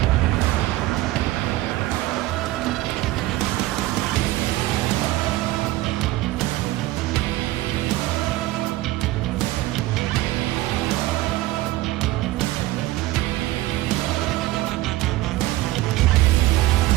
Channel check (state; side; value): quieter; left; 17.1 dB